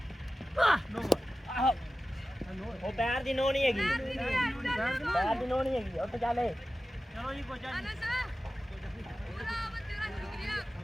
ਉਹ ਪੈਰ ਦੀ ਨੋ ਨਹੀਂ ਹੈਗੀ ਪੈਰ ਦੀ ਨੋ ਨਹੀਂ ਹੈਗੀ ਉੱਠ ਚੱਲੇ ਚਲੋ ਜੀ ਕੋਚਾ ਜੀ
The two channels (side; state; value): both; normal; correlation 0.95